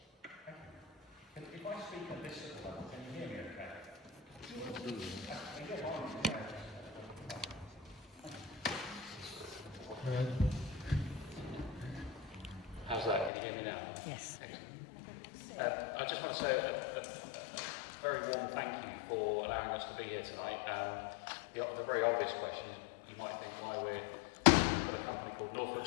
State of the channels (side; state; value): right; drops out; at 13.3 s